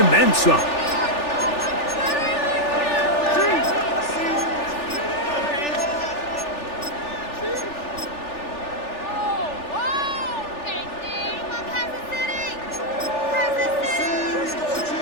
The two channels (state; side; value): late; right; 3.4 ms